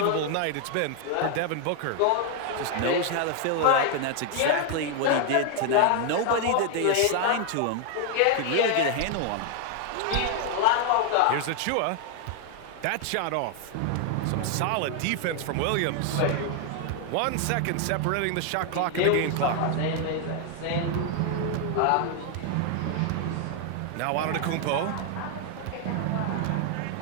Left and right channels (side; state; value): both; different; correlation 0.00